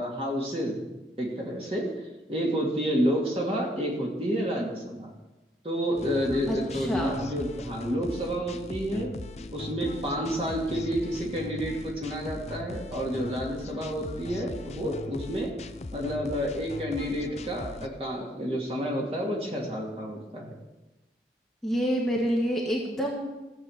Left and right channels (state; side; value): normal; both; correlation 0.67